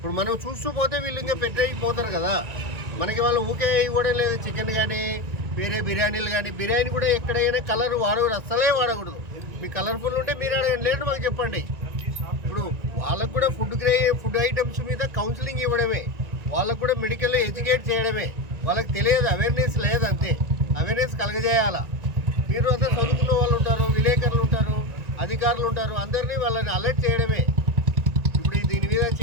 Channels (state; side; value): late; left; 1.9 ms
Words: మనం చూస్తూ పోతే వీళ్ళు ఇంకా పెట్టేయిపోతారు కదా. మనకి వాళ్ళు ఊకే ఇవ్వడం లేదు. చికెన్ కానీ, వేరే బిర్యానీలు కానీ, బిర్యానీ కూడా ఎక్కడైనా కలర్ వాడకూడదు, అస్సలే వాడకూడదు. మీకు కలర్ఫుల్ ఉంటే మీరు అడగండి, లేదు మాకు చెప్పండి. ఇప్పుడు వాళ్ళకు కూడా ఫుడ్ ఐటమ్స్ మీద కౌన్సిలింగ్ ఇవ్వడమే, వాళ్ళకు కూడా మెడికల్ ఎడ్యుకేట్ చేయడమే. వాళ్ళకి తెలియదు, అవేర్నెస్ లేదు, అంతే. అవేర్నెస్ కలగజేయాలా. మీరు అసలు చదువుకున్న వాళ్ళు ఉంటారు, విలేకరులు ఉంటారు, అధికారులు ఉంటారు, అందరినీ వాళ్ళని అలర్ట్ చేయడమే. ఇప్పుడు దీని మీద